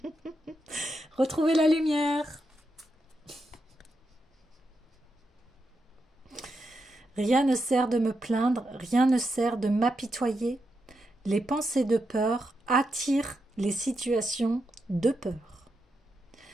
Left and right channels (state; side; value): normal; both; correlation 0.85